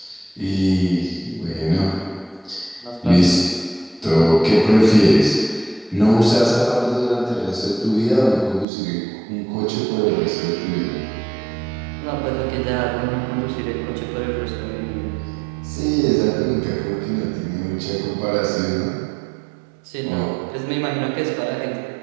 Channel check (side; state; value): left; drops out; at 8.7 s